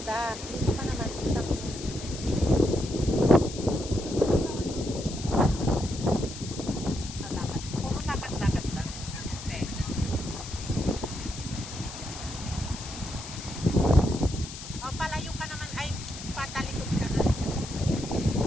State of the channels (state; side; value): noise; left; hiss, 11 dB below the sound